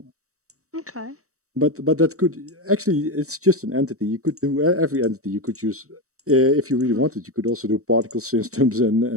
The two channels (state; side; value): late; left; 0.65 ms